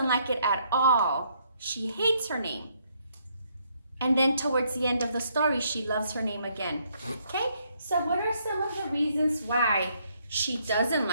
like it at all. She hates her name. And then towards the end of the story, she loves her name again. Okay, so what are some of the reasons why she doesn't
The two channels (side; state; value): both; inverted; correlation -0.71